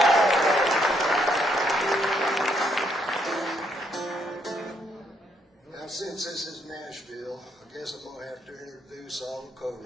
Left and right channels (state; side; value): normal; both; correlation 0.73